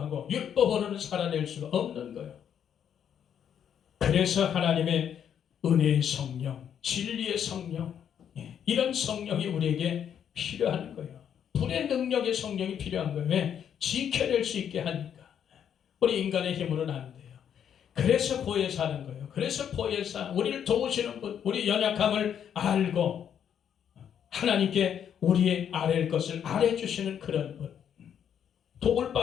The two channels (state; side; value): quieter; right; 8.8 dB